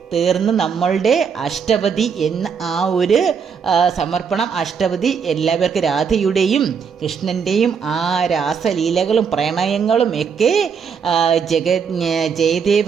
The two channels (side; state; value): left; quieter; 6.5 dB